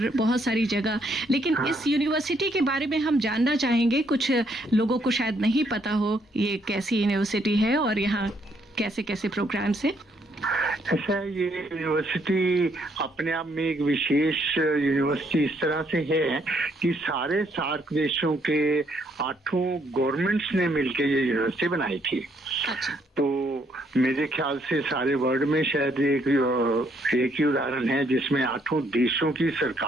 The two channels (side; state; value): both; normal; correlation 0.71